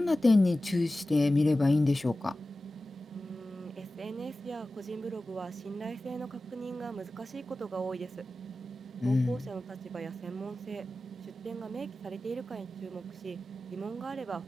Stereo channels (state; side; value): normal; both; correlation 0.95